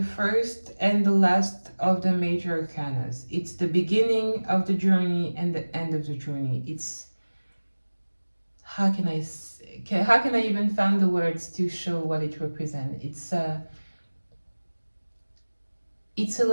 first and the last of the major arcanas. It's the beginning of the journey and the end of the journey. It's, how can I how can I even find the words to show what it represents? It's a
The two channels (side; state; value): both; inverted; correlation -1.00